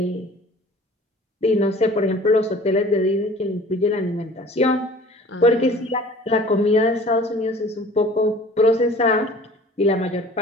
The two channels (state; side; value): normal; both; correlation 0.46